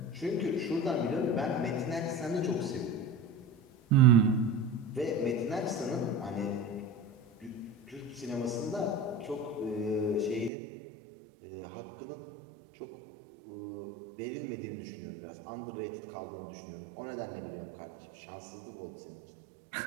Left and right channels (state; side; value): drops out; left; at 10.5 s